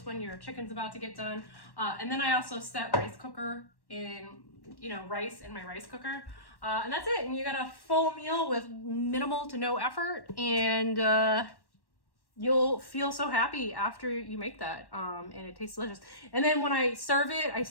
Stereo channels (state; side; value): late; right; 1.1 ms